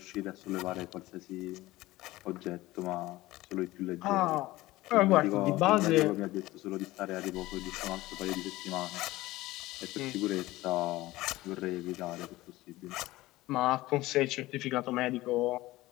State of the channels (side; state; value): right; quieter; 18.2 dB